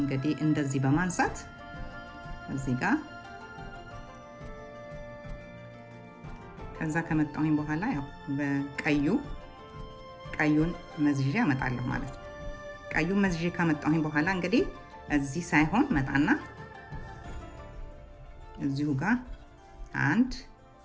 እንደዚህ በማንሳት እዚህ ጋር ከዛ ከመጣሁኝ በኋላ ያው ቀዩን መዝዤ አመጣለሁ ማለት ነው። ቀዩን መዝዤ ካመጣሁኝ በኋላ እንግዲህ እዚህ ሳይሆን መጣና እዚሁ ጋር አንድ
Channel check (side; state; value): both; identical; correlation 1.00